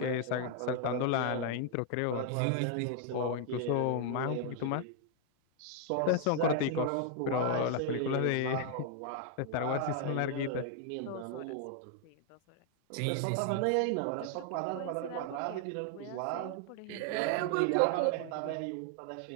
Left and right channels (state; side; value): different; both; correlation 0.00